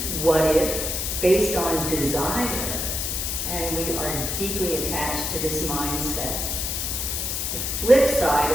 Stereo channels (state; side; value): noise; left; hiss, 2 dB below the sound